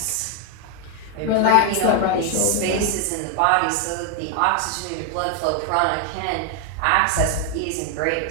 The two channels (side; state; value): both; different; correlation 0.00